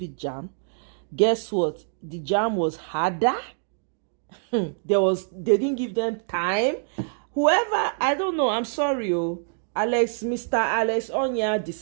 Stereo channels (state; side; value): silent; left; 61 dB below the other